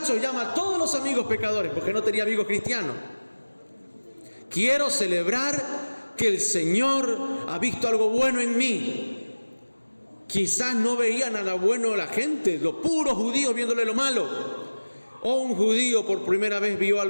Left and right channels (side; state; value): both; inverted; correlation -1.00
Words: llama a todos los amigos pecadores, porque no tenía amigos cristianos. Quiero celebrar que el Señor ha visto algo bueno en mí. Quizás no veía nada bueno la gente, los puros judíos viéndole lo malo. O un judío por primera vez vio